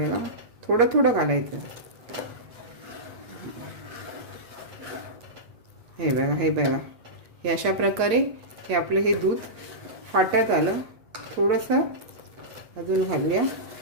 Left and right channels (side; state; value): left; late; 8.5 ms